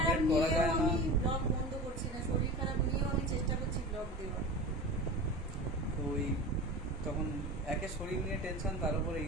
করা যায় না। আমি ব্লগ বন্ধ করছি না, শরীর খারাপ নিয়েও আমি চেষ্টা করছি ব্লগ দেওয়ার। তো ওই তখন একে শরীর নিয়ে টেনশন, তার উপরে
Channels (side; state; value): both; normal; correlation 0.32